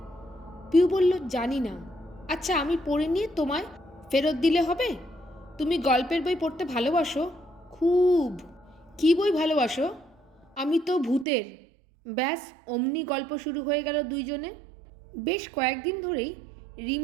পিউ বলল, জানি না। আচ্ছা, আমি পড়ে নিয়ে তোমায় ফেরত দিলে হবে? তুমি গল্পের বই পড়তে ভালোবাসো? খুব। কি বই ভালোবাসো? আমি তো ভূতের। ব্যাস, অমনি গল্প শুরু হয়ে গেল দুইজনে। বেশ কয়েকদিন ধরেই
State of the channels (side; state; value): left; drops out; at 11.2 s